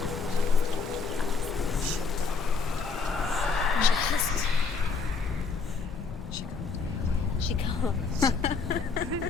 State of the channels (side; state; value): right; quieter; 4.7 dB